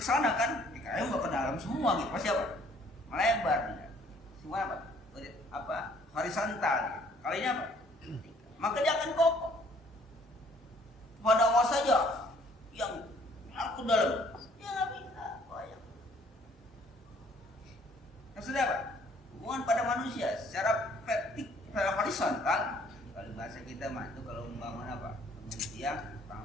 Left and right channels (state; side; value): normal; both; correlation 0.60